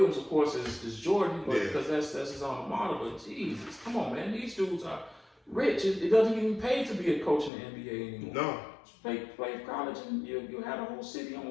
of course, is Jordan, because that's his alma mater. But Jesus, come on, man, these dudes are rich. It doesn't even pay to be a coach in the NBA anymore. No. Play college, and you have a whole city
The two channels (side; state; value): right; drops out; at 7.5 s